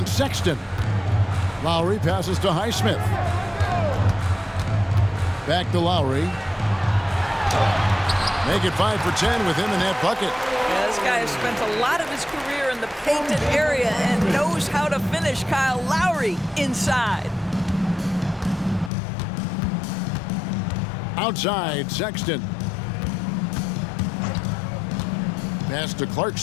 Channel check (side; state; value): right; drops out; at 18.9 s